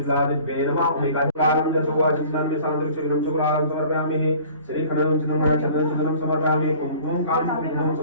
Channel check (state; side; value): inverted; both; correlation -0.48